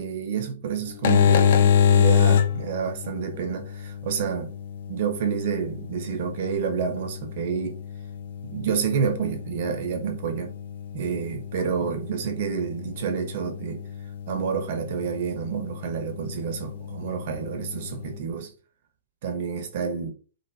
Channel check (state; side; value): inverted; both; correlation -0.54